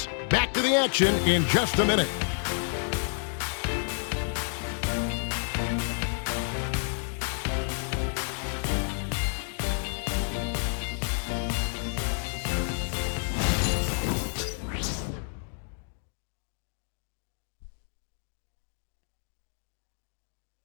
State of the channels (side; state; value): right; silent; 58 dB below the other